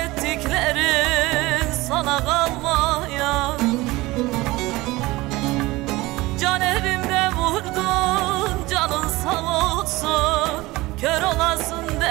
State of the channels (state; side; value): quieter; left; 20.3 dB